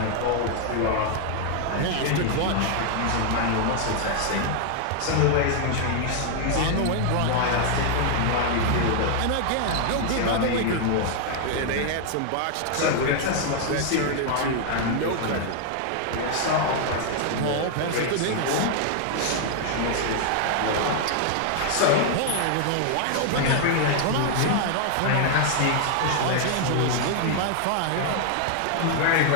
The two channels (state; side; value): different; both; correlation 0.00